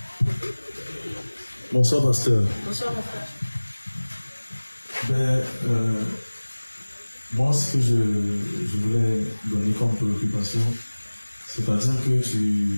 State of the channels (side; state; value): both; inverted; correlation -1.00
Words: Bonsoir, pasteur. Bonsoir, mon frère. Moi, ce que je voulais donner comme préoccupation, c'est-à-dire que